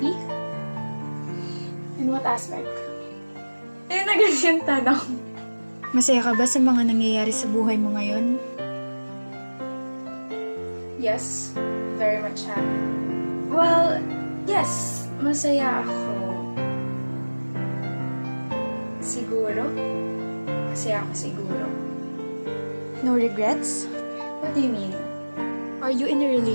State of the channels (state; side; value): inverted; both; correlation -1.00